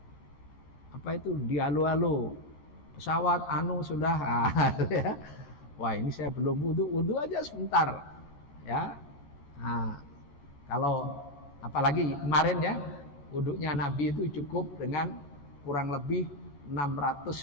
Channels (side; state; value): right; late; 14 ms